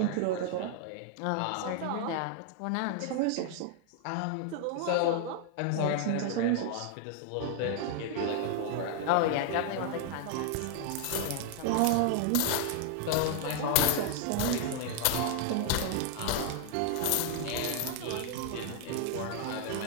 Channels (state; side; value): different; both; correlation 0.00